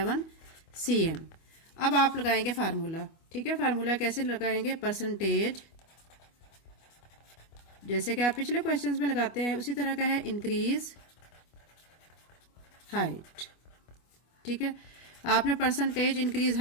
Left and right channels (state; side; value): late; right; 25 ms